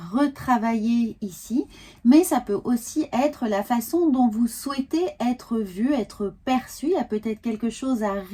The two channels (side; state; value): both; identical; correlation 1.00